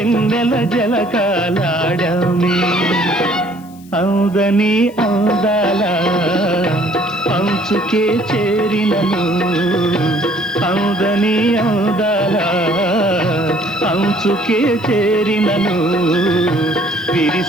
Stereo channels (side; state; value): left; noise; hiss, 26 dB below the sound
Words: జలకాలాడామే. అందని అందాల అంచుకే చేరినను, అందని అందాల అంచుకే చేరినను,